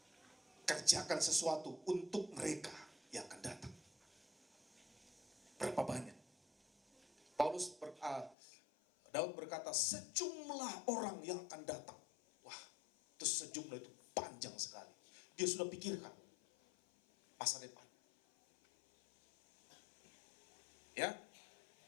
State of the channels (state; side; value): drops out; right; at 8.3 s